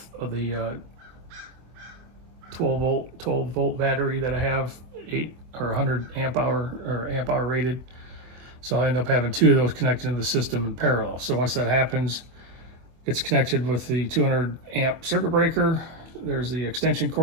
the 12 volt battery that I have, 100 amp hour or amp hour rated. So I end up having two of those connected to the system in parallel. So once that happens, it's connected with the 200 amp circuit breaker. There's the extension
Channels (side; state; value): left; late; 24 ms